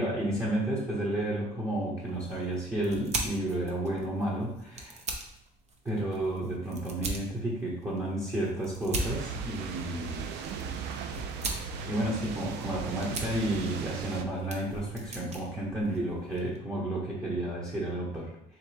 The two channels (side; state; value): both; normal; correlation 0.54